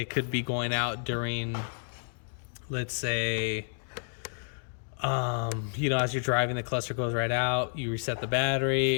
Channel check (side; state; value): right; silent; digital silence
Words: could be going out during, let's say, as you're driving, the cluster goes right out, you reset the